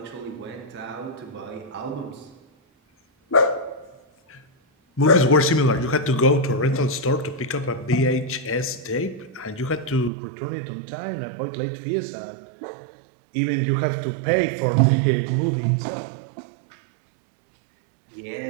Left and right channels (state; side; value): drops out; left; at 10.1 s